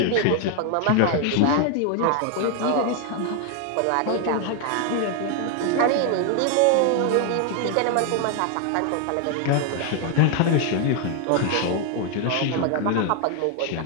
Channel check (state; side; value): different; both; correlation 0.00